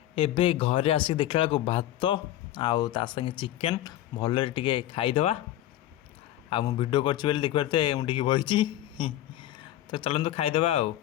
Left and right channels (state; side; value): quieter; right; 13.5 dB